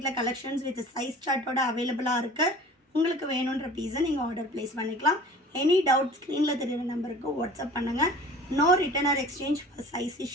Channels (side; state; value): both; normal; correlation 0.43